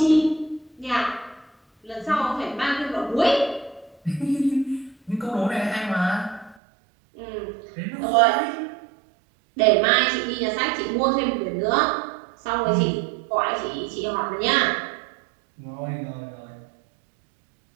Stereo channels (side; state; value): left; drops out; at 6.6 s